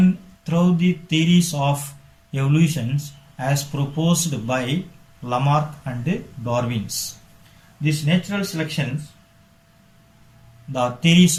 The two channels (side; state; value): both; identical; correlation 1.00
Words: through the theories of evolutions as proposed by Lamarck and Darwin. These natural selections, the